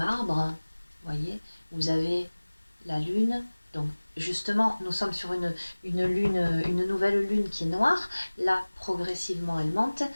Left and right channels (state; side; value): inverted; both; correlation -1.00